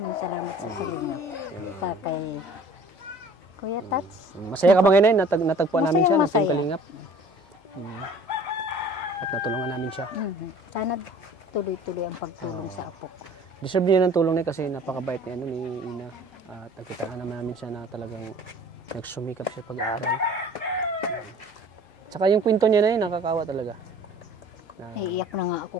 salamat sa tulong. Sa kay Kuya Tats. Masaya ka ba ngayon? Natagpuan namin siya ng Team Masaya. Kalingap. At natulungan namin siya. Sana tuloy-tuloy ang pagtulong sa apo ko. Deserve niya ng tulong niya kasi napakabait ni Ina. At nakita naman namin siya na talagang nagsumikap siya pag-aaral. Tsaka yung kwento niya na yun, nakakawa talaga. Naiiyak na nga ako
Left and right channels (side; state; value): both; normal; correlation 0.49